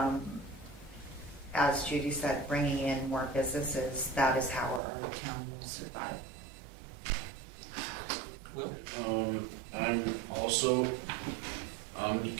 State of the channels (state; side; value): drops out; left; at 4.8 s